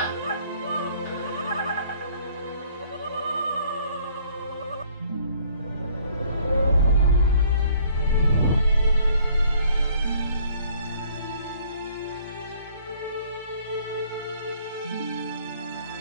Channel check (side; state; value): both; inverted; correlation -0.58